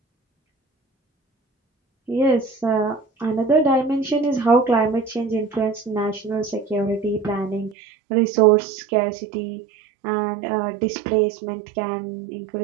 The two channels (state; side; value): drops out; left; at 7.8 s